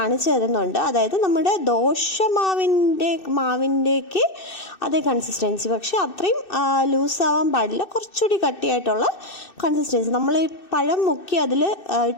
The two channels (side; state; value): right; late; 2.6 ms